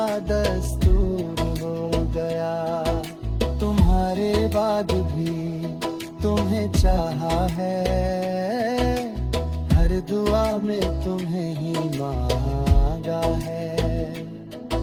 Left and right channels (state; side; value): identical; both; correlation 1.00